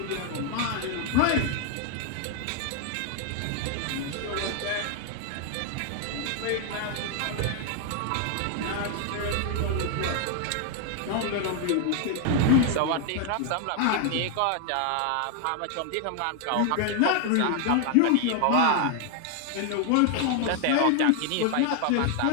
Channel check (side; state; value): both; different; correlation 0.00